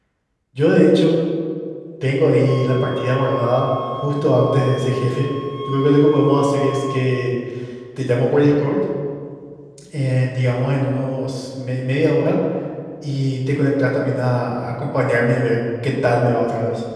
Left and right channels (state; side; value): identical; both; correlation 1.00